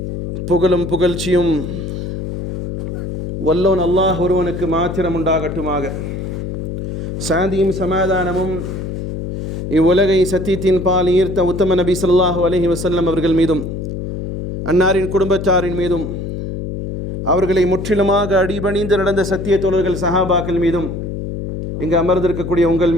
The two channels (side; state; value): left; noise; hum, 5 dB below the sound